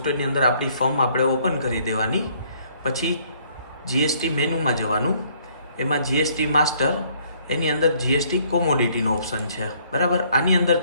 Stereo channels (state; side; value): inverted; both; correlation -0.63